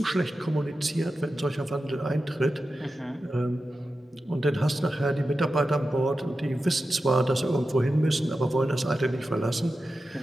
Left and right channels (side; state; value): both; normal; correlation 0.92